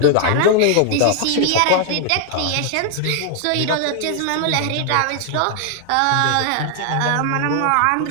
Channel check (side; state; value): both; different; correlation 0.00